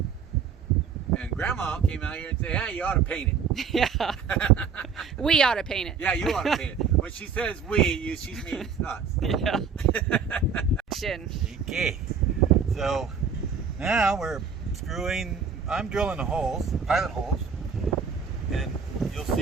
And Grandma came out here and said, "Hey, you ought to paint it." Yeah. We ought to paint it. Yeah, you ought to paint it. When she says we, she means us. Yeah. Action. Okay. So now we're screwing. I'm drilling the holes, pilot holes, and you'll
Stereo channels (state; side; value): quieter; left; 6.1 dB